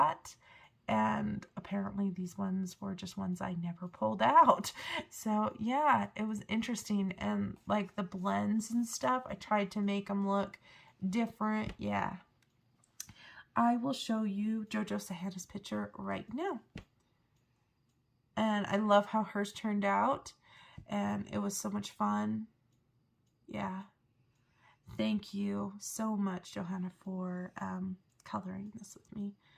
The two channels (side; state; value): both; identical; correlation 1.00